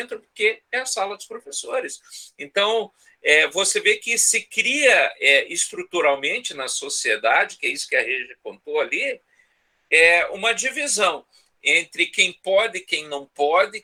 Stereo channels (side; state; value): both; identical; correlation 1.00